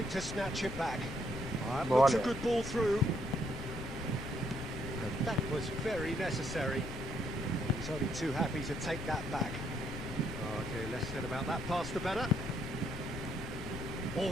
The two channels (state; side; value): noise; left; rumble, 7 dB below the sound